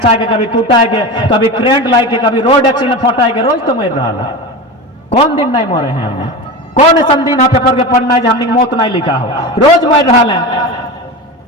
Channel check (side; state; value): both; normal; correlation 0.26